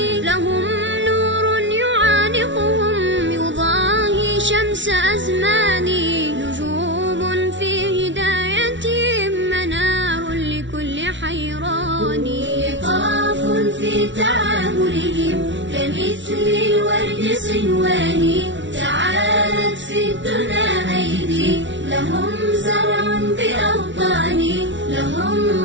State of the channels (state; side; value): late; left; 0.54 ms